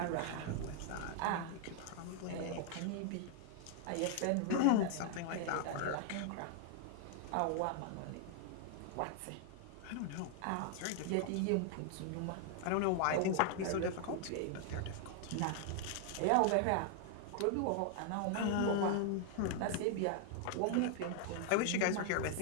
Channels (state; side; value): different; both; correlation 0.00